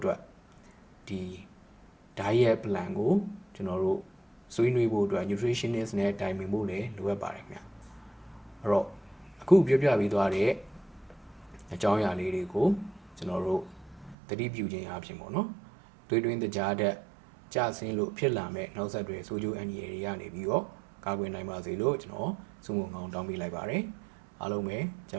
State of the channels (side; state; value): left; drops out; at 14.2 s